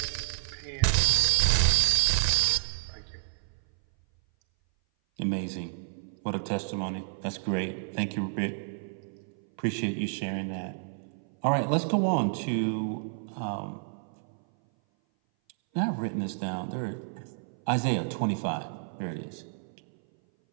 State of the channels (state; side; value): silent; left; 57 dB below the other